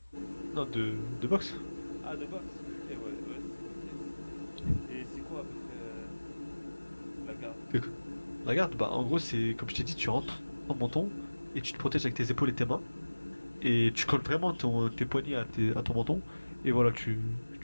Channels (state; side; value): inverted; both; correlation -1.00